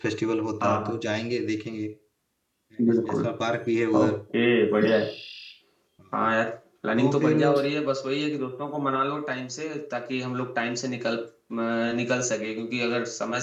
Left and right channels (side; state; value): both; identical; correlation 1.00